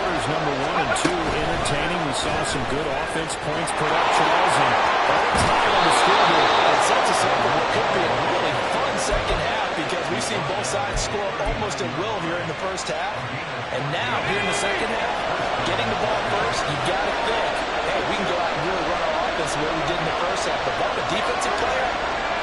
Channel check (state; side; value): identical; both; correlation 1.00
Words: number 1 and 2 entertaining. We saw some good offense points put up, Charles, and all time on the scoreboard. It sets us up for what could be a really fun second half because we've seen both sides score almost at will here in the first half. And now, here in the second half, getting the ball first, you got to think, hey, we can go out and really run our offense the way we did in the first half. But if I'm a defensive player,